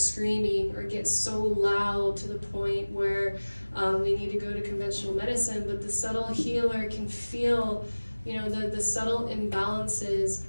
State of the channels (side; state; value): both; inverted; correlation -1.00